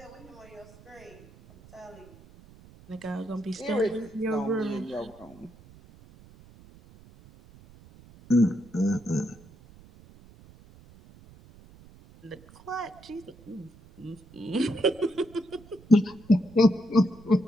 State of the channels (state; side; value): noise; right; rumble, 23 dB below the sound